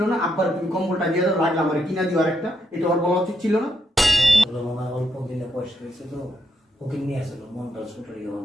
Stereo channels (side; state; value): both; normal; correlation 0.79